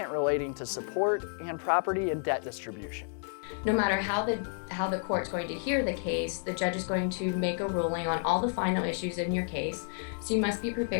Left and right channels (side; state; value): right; silent; 57 dB below the other